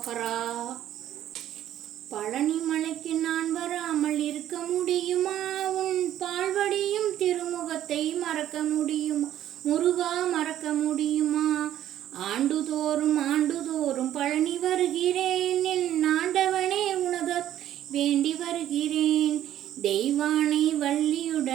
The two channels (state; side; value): quieter; left; 12.0 dB